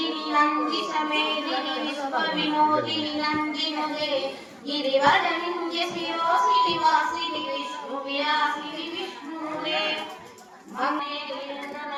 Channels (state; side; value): identical; both; correlation 1.00